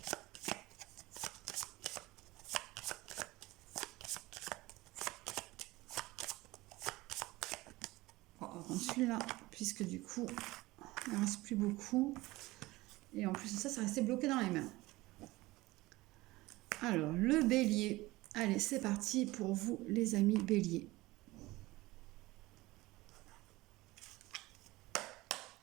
? On va prendre celui-là, puisque du coup, il ne reste plus beaucoup. Et en plus de ça, ça restait bloqué dans les mains. Alors, le bélier. Allez, c'est parti pour vous, les amis béliers.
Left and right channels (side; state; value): left; quieter; 19.8 dB